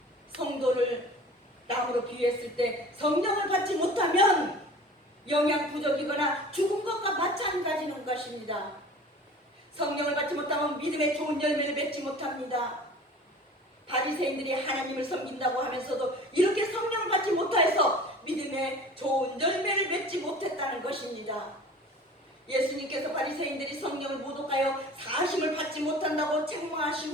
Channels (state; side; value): normal; both; correlation 0.43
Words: 성도를 나무로 비유했을 때 성령을 받지 못하면 영양 부족이거나 죽은 것과 마찬가지인 것입니다. 성령을 받지 못하면 믿음의 좋은 열매를 맺지 못합니다. 바리새인들이 하나님을 섬긴다고 하면서도 이렇게 성령을 받지 못해서 믿음의 좋은 열매를 맺지 못했다는 것입니다. 예수님께서 바리새인들이 성령을 모독하여 사심을 받지 못한다고